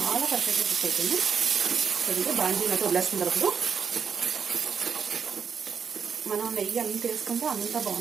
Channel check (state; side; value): quieter; left; 6.7 dB